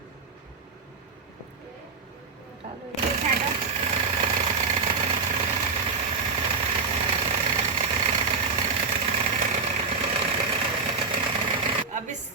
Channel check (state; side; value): quieter; left; 4.8 dB